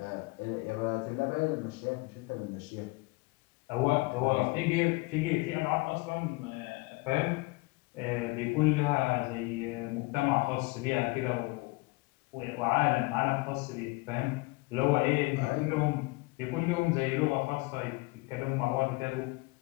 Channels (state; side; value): quieter; right; 24.9 dB